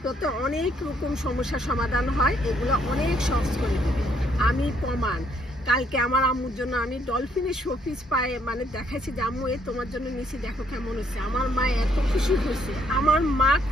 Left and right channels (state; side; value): normal; both; correlation 0.69